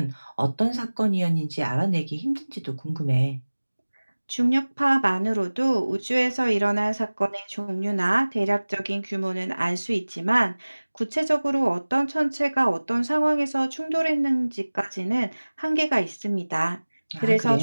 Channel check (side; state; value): both; inverted; correlation -1.00